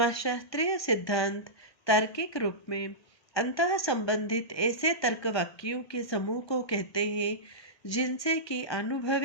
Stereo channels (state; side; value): late; right; 1.2 ms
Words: सिद्धांत तार्किक रूप में अंतः संबंधित ऐसे तर्क वाक्यों के समूह को कहते हैं जिनसे कि